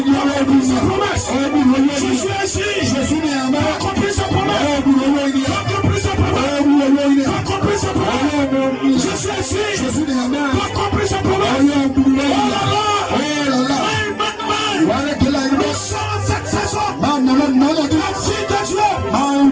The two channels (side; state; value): both; identical; correlation 1.00